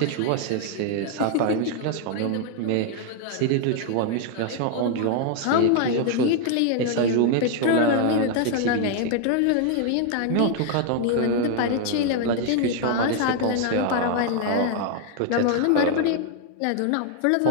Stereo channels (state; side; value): different; both; correlation 0.00